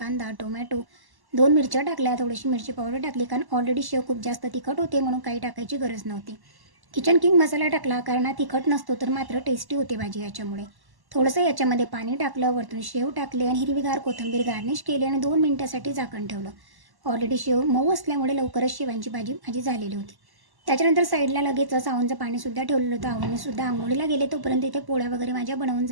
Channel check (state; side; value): late; left; 1.1 ms